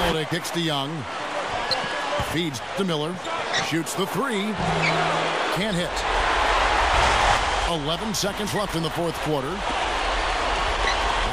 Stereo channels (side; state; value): both; identical; correlation 1.00